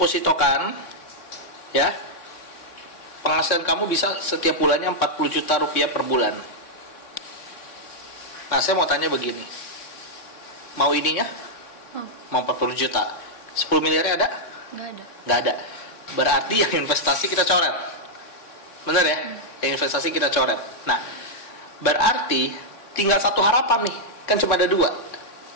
ya, penghasilan kamu bisa setiap bulannya 40 juta rupiah per bulan. Nah, saya mau tanya begini, mau ininya? Mau 40 juta, 10 miliarnya ada? Nggak ada. Berarti yang investasi kita coret, bener ya? Yang investasi kita coret. Nah, berarti tinggal satu harapan nih, kan cuma ada dua.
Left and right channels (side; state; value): right; late; 3.6 ms